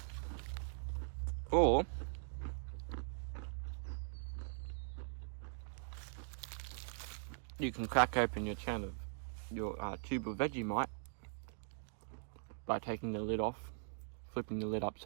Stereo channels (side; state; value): left; silent; digital silence